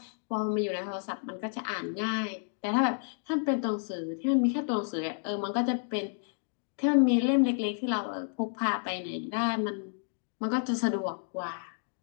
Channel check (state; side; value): silent; right; digital silence